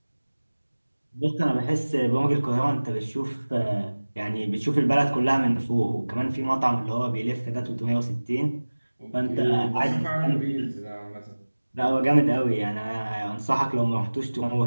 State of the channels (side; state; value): both; inverted; correlation -1.00